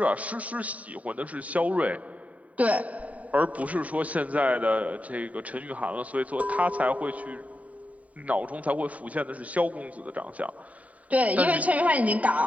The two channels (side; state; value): left; late; 0.069 ms